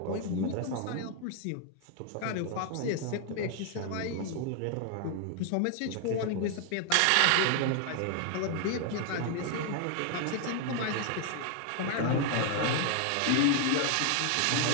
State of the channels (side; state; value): both; different; correlation 0.00